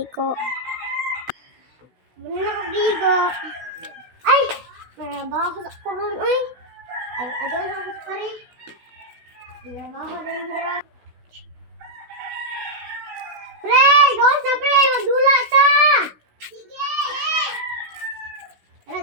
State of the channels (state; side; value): late; left; 16 ms